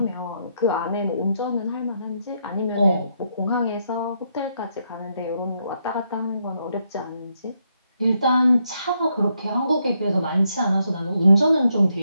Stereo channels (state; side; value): inverted; both; correlation -0.78